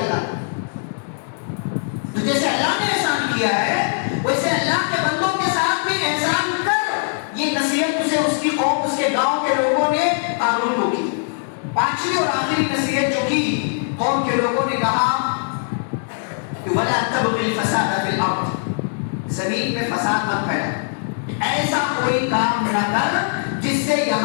نے۔ تو جیسے اللہ نے احسان کیا ہے ویسے اللہ کے بندوں کے ساتھ بھی احسان کر، یہ نصیحت اسے اس کی قوم، اس کے گاؤں کے لوگوں نے قابل کو کی۔ پانچویں اور آخری نصیحت جو کی، قوم کے لوگوں نے کہا کہ وَلَا تَبْغِ الْفَسَادَ فِي الْأَرْضِ، زمین میں فساد نہ پھیلا، ایسا کوئی کام نہ کر جس سے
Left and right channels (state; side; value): silent; right; digital silence